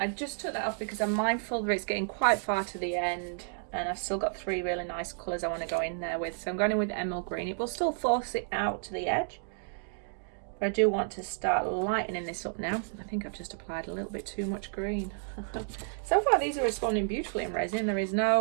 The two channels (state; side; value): silent; left; digital silence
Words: just took that off because I'm mindful that it's getting quite far to the end and I've still got three really nice colours I want to go in there with. So I'm going in with the emerald green. It will still force it out to the edge. But I do want to start lightening this up now. I think I've just applied a little bit too much green. So far these are responding beautifully in resin. There is